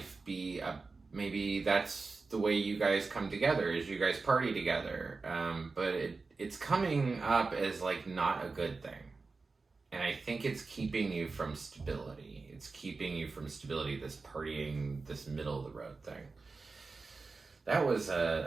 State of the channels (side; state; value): left; quieter; 4.1 dB